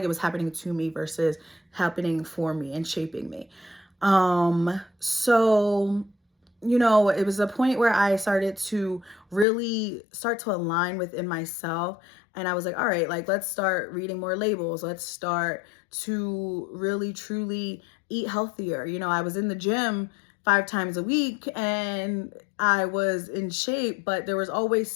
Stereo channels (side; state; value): right; drops out; at 9.5 s